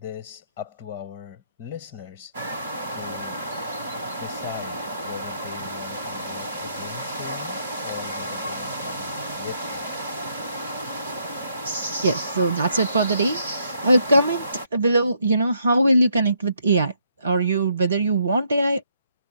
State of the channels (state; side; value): inverted; both; correlation -0.73